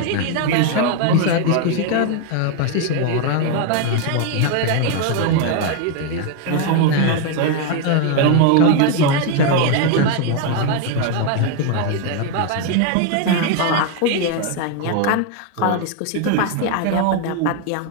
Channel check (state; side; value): different; both; correlation 0.01